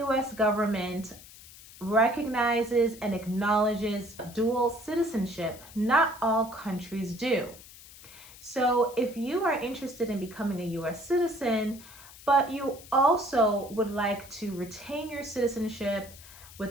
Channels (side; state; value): left; noise; hiss, 19 dB below the sound